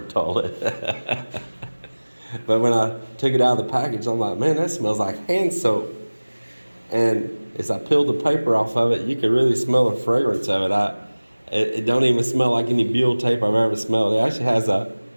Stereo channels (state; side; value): inverted; both; correlation -1.00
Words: toilet. But when I took it out of the package, I'm like, man, that smells like hand soap. And as I peeled the paper off of it, you could really smell the fragrance of it. It don't even smell like any buhl tape I've ever smelled. It actually has a